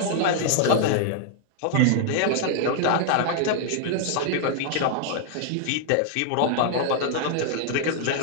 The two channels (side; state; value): both; different; correlation 0.00